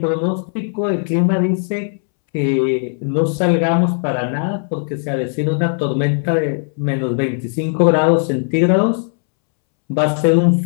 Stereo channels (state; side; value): silent; right; 68 dB below the other